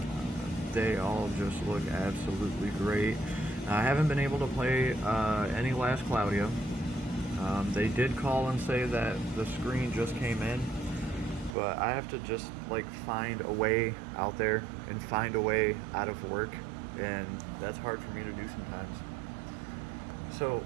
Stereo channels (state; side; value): drops out; left; at 11.6 s